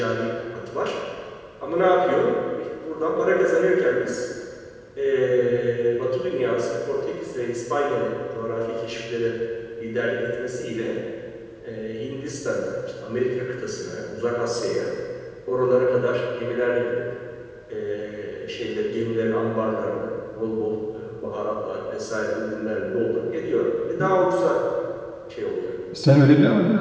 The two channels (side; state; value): both; identical; correlation 1.00